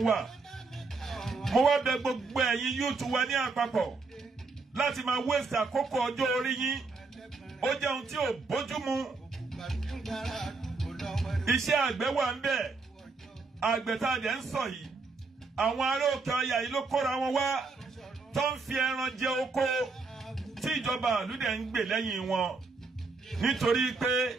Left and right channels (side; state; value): left; quieter; 4.1 dB